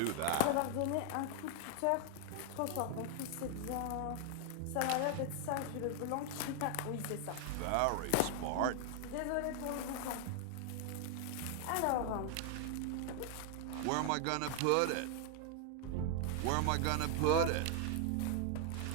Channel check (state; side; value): different; both; correlation 0.00